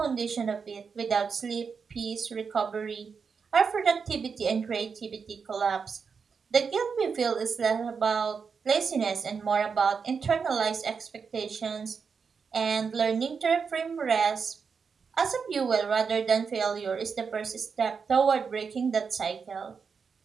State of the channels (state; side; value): quieter; left; 5.8 dB